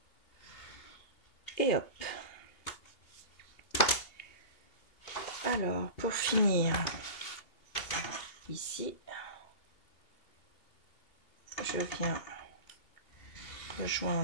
Et hop. Alors, pour finir, ici, je viens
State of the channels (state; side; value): late; right; 2.8 ms